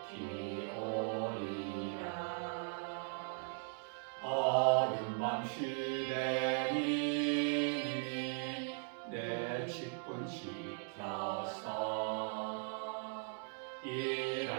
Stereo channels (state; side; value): silent; left; 52 dB below the other